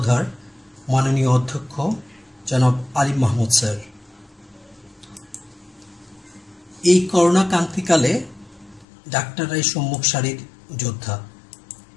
মাননীয় অধ্যক্ষ জনাব আলিম মাহমুদ স্যার। এই করোনা ক্রান্তিকালে ডাক্তাররাই সম্মুখ সারির যোদ্ধা।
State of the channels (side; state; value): right; drops out; at 8.8 s